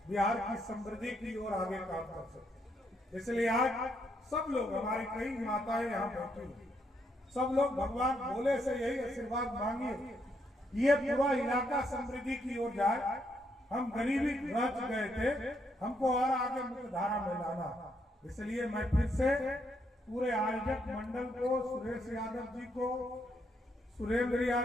बिहार की समृद्धि की ओर आगे काम कर सके। इसलिए आज सब लोग, हमारी कई माताएं यहाँ बैठी हैं, सब लोग भगवान भोले से यही आशीर्वाद मांगिए, ये पूरा इलाका समृद्धि की ओर जाए। हम गरीबी रच गए थे, हमको और आगे मुख्य धारा में लाना। इसलिए मैं फिर से पूरे आयोजक मंडल को, सुरेश यादव जी को, सुरेंद्र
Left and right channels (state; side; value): normal; both; correlation 0.76